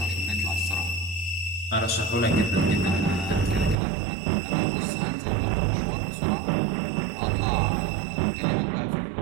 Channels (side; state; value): left; drops out; at 3.8 s